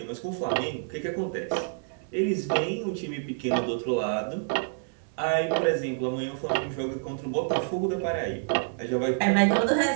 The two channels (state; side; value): silent; left; 59 dB below the other